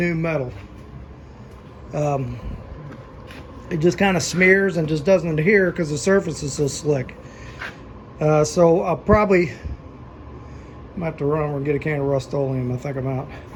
metal. It just kind of smears and just doesn't adhere because the surface is so slick. So I'll probably might have to run over and get a can of Rust-Oleum. I think I'm out.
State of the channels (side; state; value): both; identical; correlation 1.00